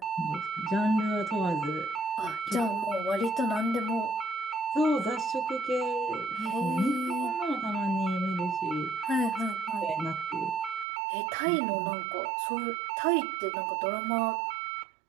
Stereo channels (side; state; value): left; drops out; at 10.9 s